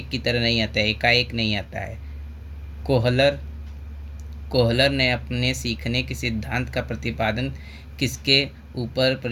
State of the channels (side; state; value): both; identical; correlation 1.00